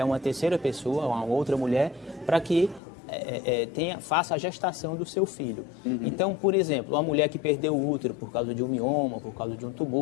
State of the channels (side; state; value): right; drops out; at 2.8 s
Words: uma terceira pessoa, a uma outra mulher, para que faça a gestação do seu filho. Então, por exemplo, uma mulher que perdeu o útero por causa de um mioma, por causa de um